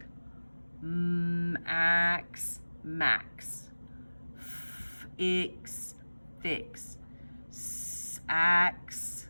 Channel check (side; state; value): both; inverted; correlation -1.00